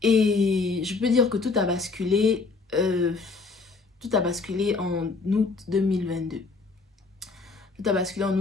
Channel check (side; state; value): right; quieter; 4.1 dB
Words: Et je peux dire que tout a basculé. Tout a basculé en août 2022. Tout a basculé en